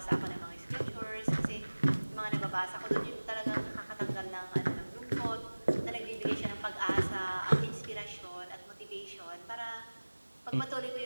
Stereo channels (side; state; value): both; inverted; correlation -1.00